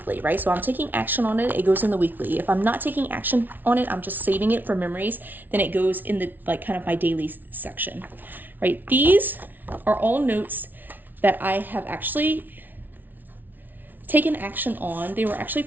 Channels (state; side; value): late; left; 0.086 ms